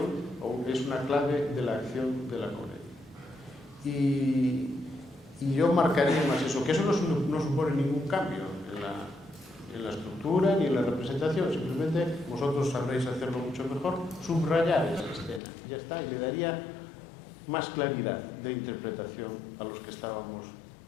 o es una clave de la acción de la comedia. Y yo marcaría más eso, que eso no supone ningún cambio en la estructura ni en la representación, simplemente vosotros sabréis hacerlo mucho mejor, subrayar esa escena, ya está, y le daría más claridad de interpretación a los que estábamos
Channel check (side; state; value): right; drops out; at 15.4 s